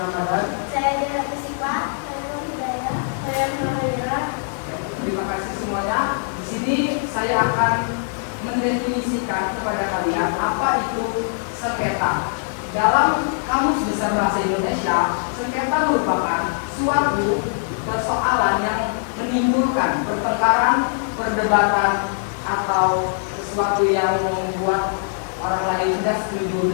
Ramadan. Saya Dira Sipa, saya Nur Hidayah, saya Nurhayra. Terima kasih semuanya. Di sini saya akan mendefinisikan kepada kalian apa itu sengketa. Dalam Kamus Besar Bahasa Indonesia, sengketa merupakan suatu persoalan yang menimbulkan pertengkaran, perdebatan, atau sesuatu yang membuat orang lain tidak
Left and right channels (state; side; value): silent; right; digital silence